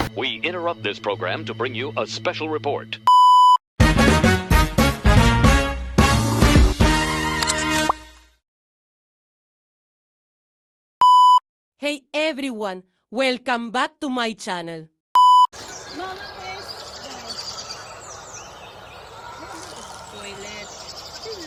We interrupt this program to bring you a special report. Hey everyone, welcome back to my channel. Mama is toilet. This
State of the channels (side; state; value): both; identical; correlation 1.00